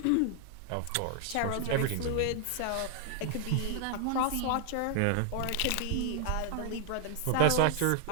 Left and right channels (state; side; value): different; both; correlation 0.00